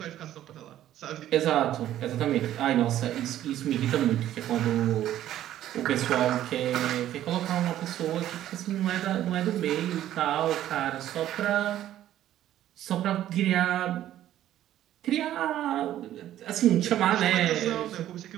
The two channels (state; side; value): quieter; left; 12.5 dB